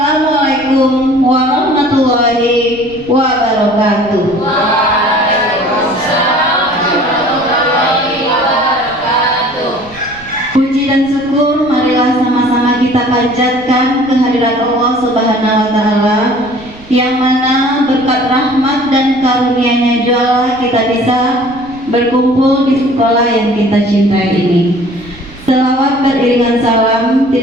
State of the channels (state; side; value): noise; right; rumble, 22 dB below the sound